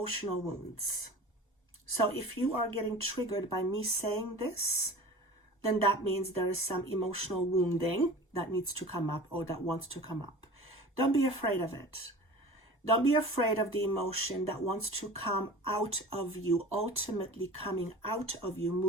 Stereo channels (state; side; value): normal; both; correlation 0.38